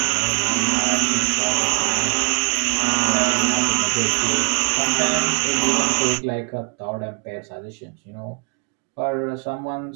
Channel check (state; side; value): quieter; left; 31.7 dB